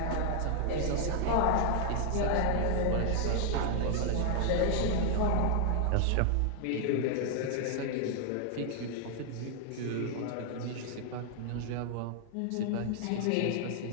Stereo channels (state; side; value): different; both; correlation 0.00